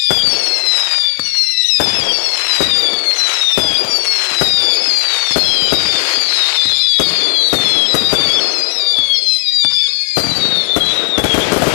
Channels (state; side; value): silent; right; digital silence